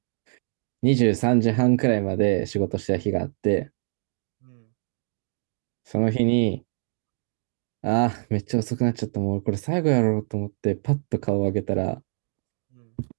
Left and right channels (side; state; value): left; silent; digital silence